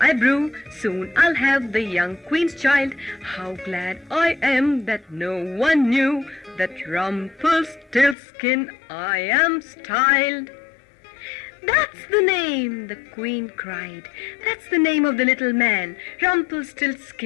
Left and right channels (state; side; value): drops out; right; at 8.2 s